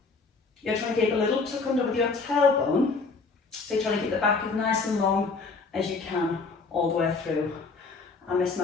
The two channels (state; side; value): quieter; right; 4.2 dB